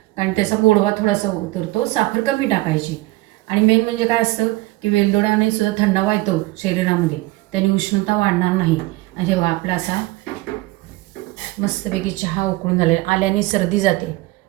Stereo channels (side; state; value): left; quieter; 19.6 dB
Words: कारण त्याचा गोडवा थोडासा उतरतो. साखर कमी टाकायची. आणि मेन म्हणजे काय असतं की वेलदोड्याने सुद्धा थंडावा येतो शरीरामध्ये, त्याने उष्णता वाढणार नाही. आणि जेव्हा आपला असा मस्तपैकी चहा उकळून झालेला, आल्याने सर्दी जाते